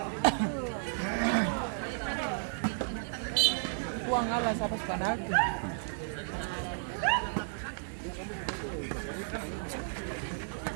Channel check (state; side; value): silent; left; 56 dB below the other